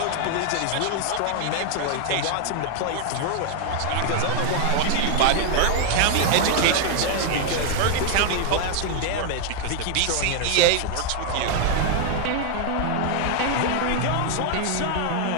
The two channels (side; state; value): both; different; correlation 0.00